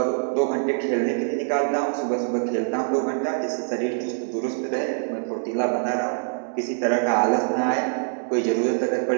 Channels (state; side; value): silent; left; digital silence